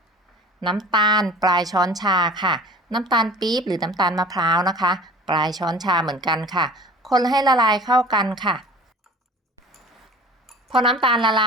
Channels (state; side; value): normal; both; correlation 0.43